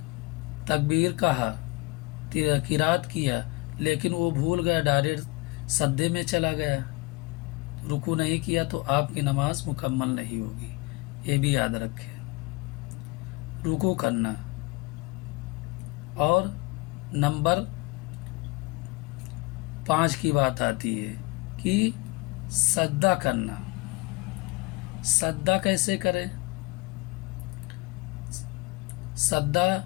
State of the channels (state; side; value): quieter; right; 23.6 dB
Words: تکبیر کہا، قرات کیا، لیکن وہ بھول گیا، ڈائریکٹ سجدے میں چلا گیا، رکوع نہیں کیا، تو آپ کی نماز مکمل نہیں ہوگی۔ یہ بھی یاد رکھیں، رکوع کرنا۔ اور نمبر 5 کی بات آتی ہے کہ سجدہ کرنا۔ سجدہ کیسے کریں؟ سجدہ